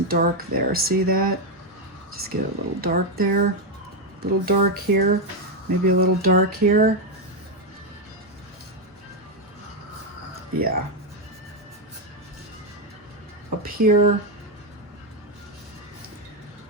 dark there. See that? Just get a little dark there. A little dark here. Maybe a little dark here. Yeah. Up here,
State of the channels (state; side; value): normal; both; correlation 0.04